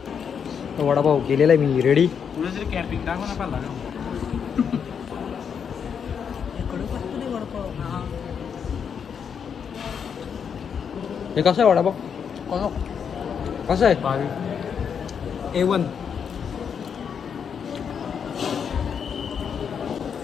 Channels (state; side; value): quieter; right; 7.2 dB